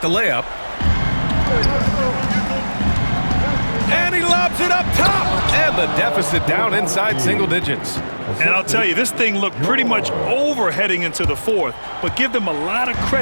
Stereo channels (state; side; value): inverted; both; correlation -1.00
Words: the layup. And he lobs it up top. And the deficit down inside single digits. And I'll tell you, this thing looked pretty much over heading into the fourth, but give them a lot of